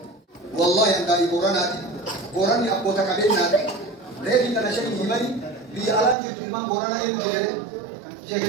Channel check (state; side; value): drops out; left; at 6.2 s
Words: wallahi an daa'ii boraanaati boranni abboota qabeenyaati reefi kana shanii himani biyya alaa jirtu ilmaan boranaa eenyu jedhee